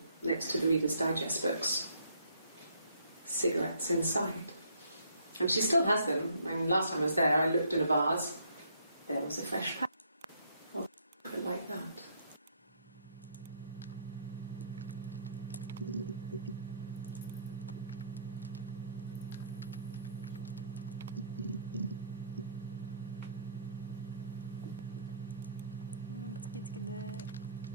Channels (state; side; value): inverted; both; correlation -0.66